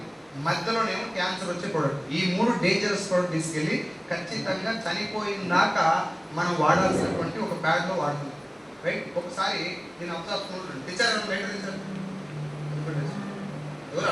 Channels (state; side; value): identical; both; correlation 1.00